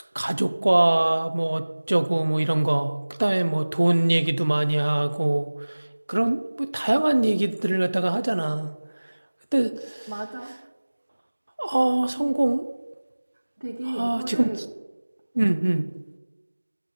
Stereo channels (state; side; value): inverted; both; correlation -1.00